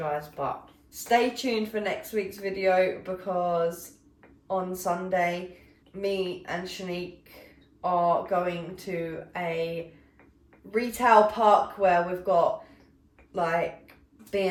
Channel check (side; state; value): both; identical; correlation 1.00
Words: but stay tuned for next week's video because on Sunday, me and Shanique are going to a retail park where we've got like